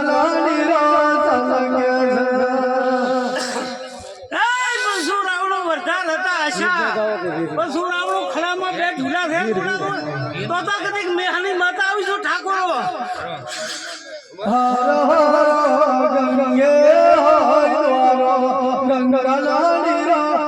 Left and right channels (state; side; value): identical; both; correlation 1.00